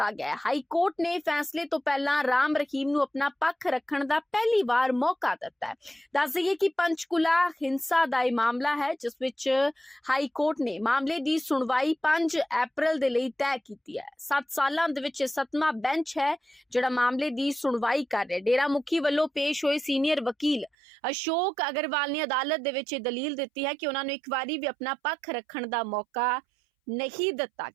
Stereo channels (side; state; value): left; drops out; at 20.7 s